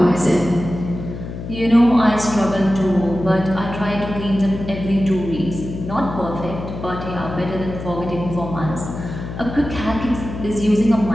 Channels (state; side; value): noise; left; hum, 8 dB below the sound